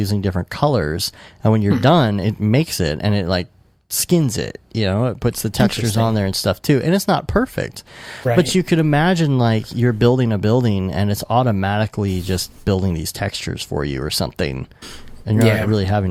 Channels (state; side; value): identical; both; correlation 1.00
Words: different colors. And when you're done, it makes it, and it skins it, it puts the textures on there and stuff too, and it's not perfect, but you could imagine like you're building a building and it's automatically just building these textures for you or something, and you're not really having